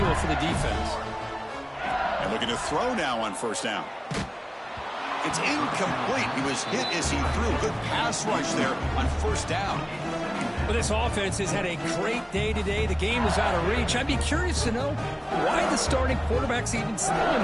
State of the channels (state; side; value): identical; both; correlation 1.00